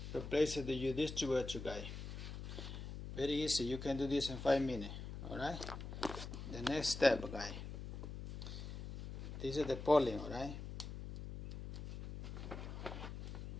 replace it with your distributor, guy. Very easy. You can do this in 5 minutes. Alright? The next step, guy. This is the polling, alright?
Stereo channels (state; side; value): noise; left; hum, 8 dB below the sound